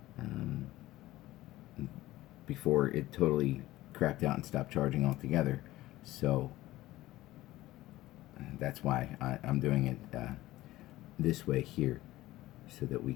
before it totally crapped out and stopped charging altogether. So that's why I'm doing it this way here, so that we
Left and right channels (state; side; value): quieter; right; 16.8 dB